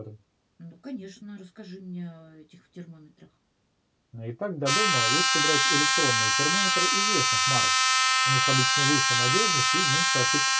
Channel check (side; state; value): both; identical; correlation 1.00